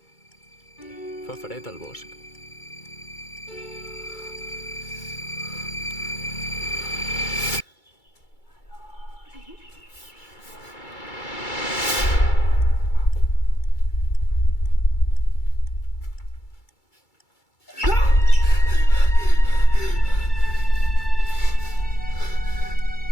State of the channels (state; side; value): late; right; 2.3 ms